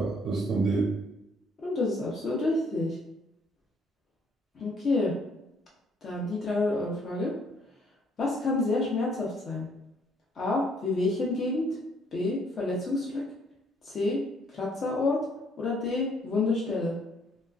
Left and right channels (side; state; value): both; normal; correlation 0.65